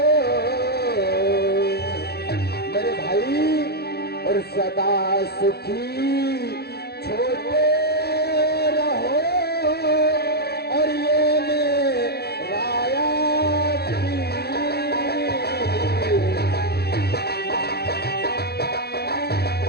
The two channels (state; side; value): late; right; 0.47 ms